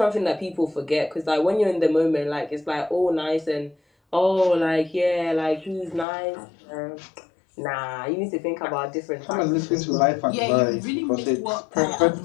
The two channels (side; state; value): right; drops out; at 6.1 s